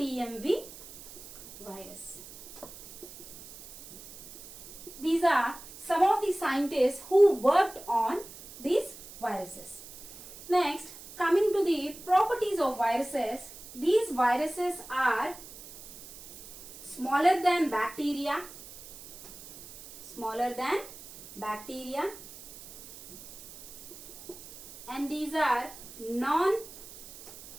virus. These are some of the scientists who worked on these viruses. Next, coming to the properties of viruses, these viruses are smaller than bacteria, and these are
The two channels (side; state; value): right; noise; hiss, 16 dB below the sound